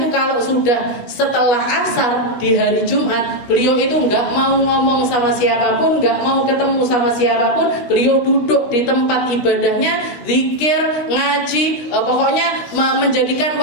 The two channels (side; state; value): right; late; 16 ms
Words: kalau sudah setelah asar di hari Jumat, beliau itu nggak mau ngomong sama siapapun, nggak mau ketemu sama siapapun. Beliau duduk di tempat ibadahnya, zikir, ngaji, pokoknya menjadikan